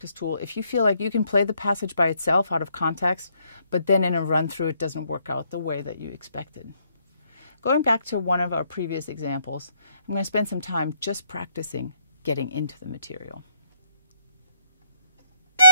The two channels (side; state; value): both; inverted; correlation -0.70